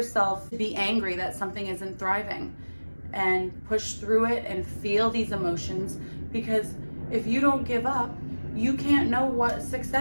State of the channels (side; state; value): both; inverted; correlation -1.00